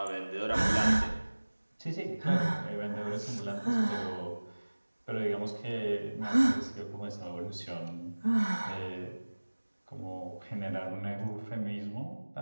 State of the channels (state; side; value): inverted; both; correlation -1.00